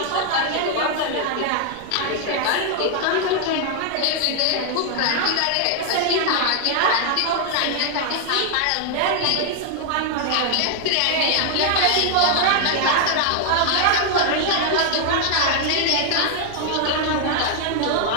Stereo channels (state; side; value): different; both; correlation 0.00